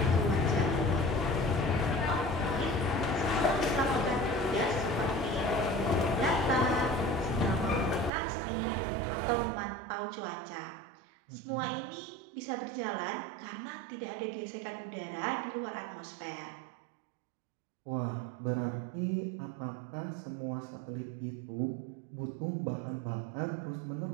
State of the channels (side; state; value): left; drops out; at 8.1 s